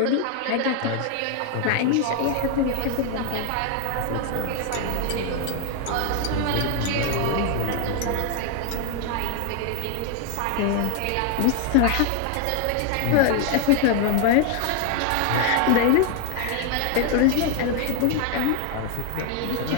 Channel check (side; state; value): both; different; correlation 0.01